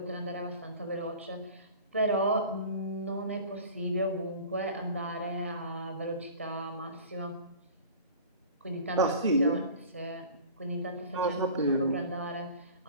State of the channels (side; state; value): both; inverted; correlation -0.41